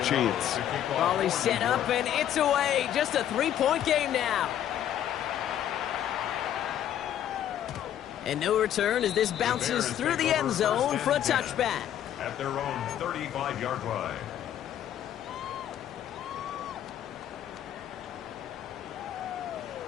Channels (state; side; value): quieter; right; 10.8 dB